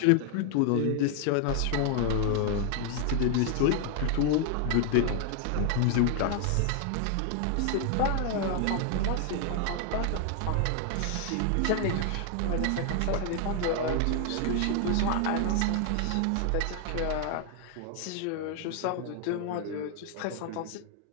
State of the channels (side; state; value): both; different; correlation 0.00